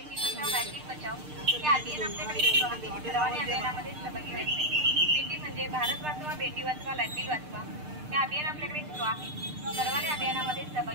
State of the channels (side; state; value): left; late; 6.6 ms